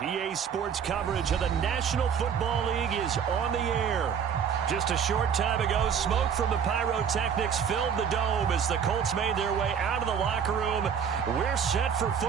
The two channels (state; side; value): quieter; left; 7.4 dB